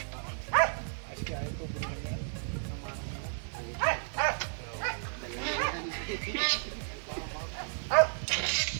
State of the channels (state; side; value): silent; left; 56 dB below the other